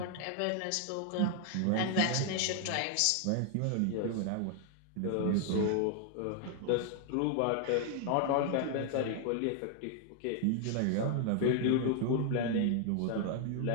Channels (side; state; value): both; different; correlation 0.00